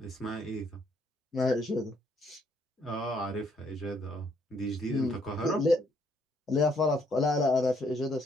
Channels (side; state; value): both; normal; correlation 0.69